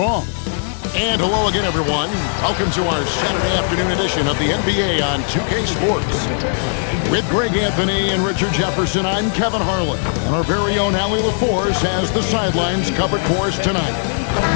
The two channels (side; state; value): right; silent; digital silence